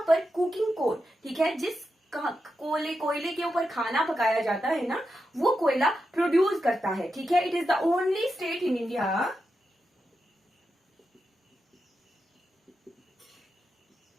पर कुकिंग कोल, ठीक है, जिस कोयले के ऊपर खाना पकाया जाता है ना, वो कोयला प्रोड्यूस करता है। ठीक है, it is the only state in India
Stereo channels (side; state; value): both; normal; correlation 0.87